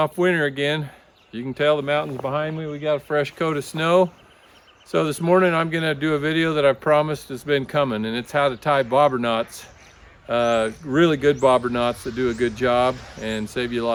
winter again. You can tell the mountains behind me, we got a fresh coat of snow. So this morning I'm gonna do a video that I promised has been coming, and it's how to tie bobber knots. Really good bobber knots that do a good job and save you a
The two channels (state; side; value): identical; both; correlation 1.00